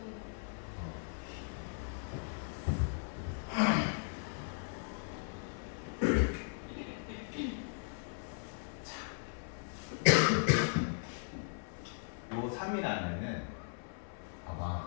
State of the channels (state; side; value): silent; right; 53 dB below the other